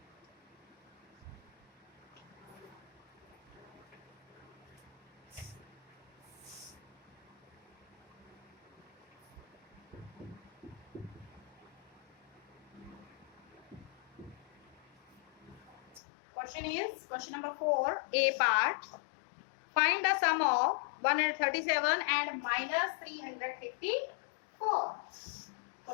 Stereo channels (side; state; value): right; drops out; at 16.0 s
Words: Question is question number 4, A part. Find the sum of 137 and minus 354.